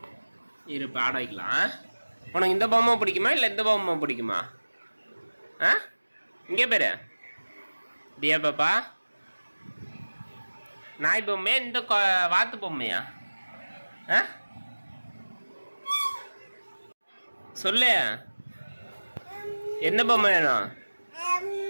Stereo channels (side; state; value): both; inverted; correlation -1.00